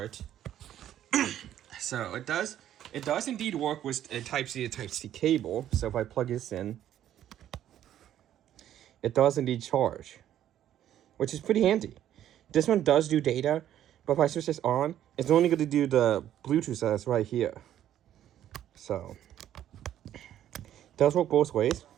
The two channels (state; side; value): quieter; left; 11.4 dB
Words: So it does indeed work with a Type-C to Type-C cable. So if I plug this in, it does indeed charge, which is pretty handy. This one does do data, but if I switch this on, it's only going to do the Bluetooth that's right here. So it does work both ways.